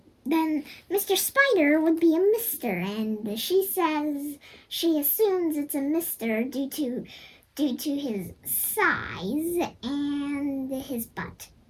then Mr. Spider would be a Mister, and she says she assumes it's a Mister due to his size and his butt.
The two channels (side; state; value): both; identical; correlation 1.00